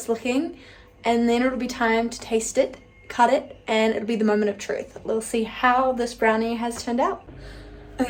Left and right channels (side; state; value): both; identical; correlation 1.00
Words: looking. And then it'll be time to taste it, cut it, and it'll be the moment of truth. We'll see how this brownie has turned out.